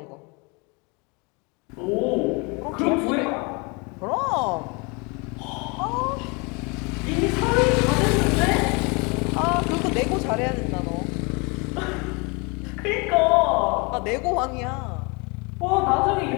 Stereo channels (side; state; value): right; quieter; 30.1 dB